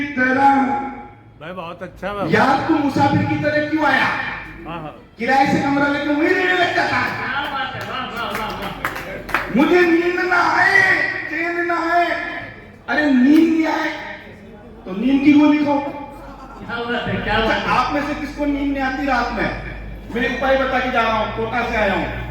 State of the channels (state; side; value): identical; both; correlation 1.00